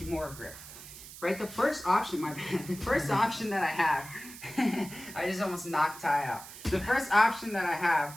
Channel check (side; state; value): right; noise; hiss, 15 dB below the sound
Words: grip, right, the first option, the first option that I have, I just almost knocked Ty out. The first option that I have